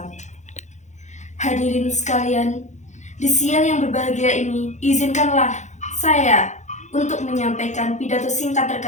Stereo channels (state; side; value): late; right; 0.34 ms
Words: Hadirin sekalian, di siang yang berbahagia ini, izinkanlah saya untuk menyampaikan pidato singkat